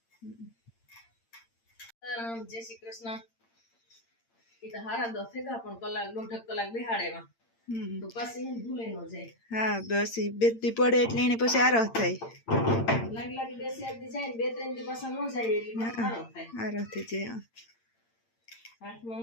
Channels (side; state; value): right; late; 8.8 ms